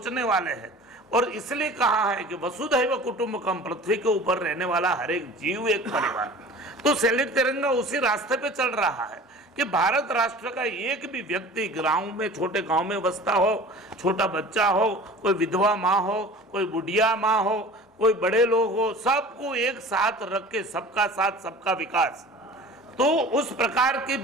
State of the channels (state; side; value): normal; both; correlation 0.42